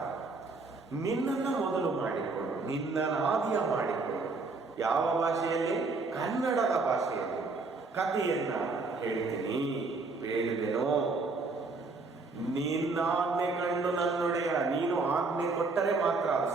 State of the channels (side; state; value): left; quieter; 3.8 dB